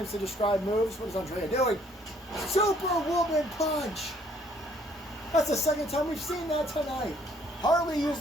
to describe moves. What is Andrea doing? Superwoman punch. That's the second time we've seen that tonight. Harley used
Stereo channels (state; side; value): normal; both; correlation 0.63